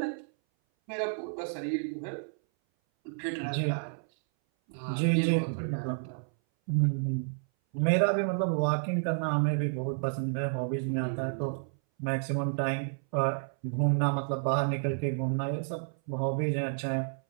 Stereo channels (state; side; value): silent; left; 57 dB below the other